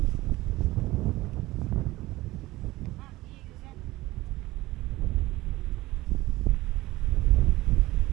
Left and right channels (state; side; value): quieter; left; 18.4 dB